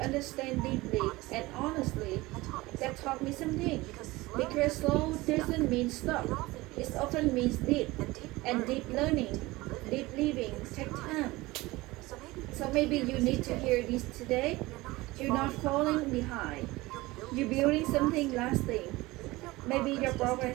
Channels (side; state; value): left; quieter; 20.5 dB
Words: understand deeply and honestly. That taught me something. Because slow doesn't mean stop. It often means deep. And deep learning, deep living takes time. So maybe you need to hear this today. You're not falling behind. You're building something lasting. Maybe your